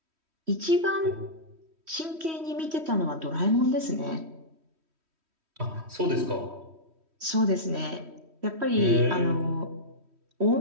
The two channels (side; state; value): left; late; 3.1 ms